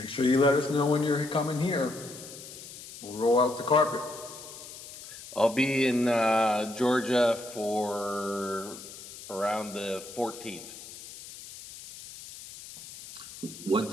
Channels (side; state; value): left; noise; hiss, 14 dB below the sound